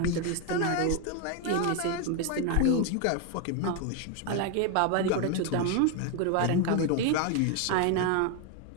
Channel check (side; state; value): both; different; correlation 0.01